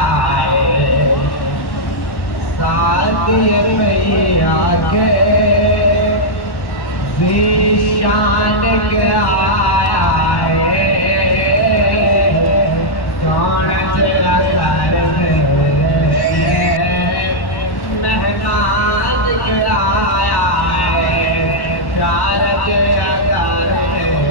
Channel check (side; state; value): right; late; 1.1 ms